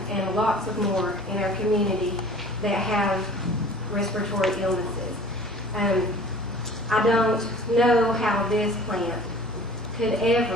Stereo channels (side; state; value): both; normal; correlation 0.46